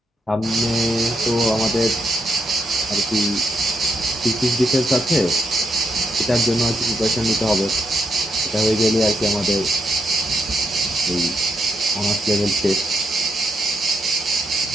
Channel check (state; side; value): normal; both; correlation 0.81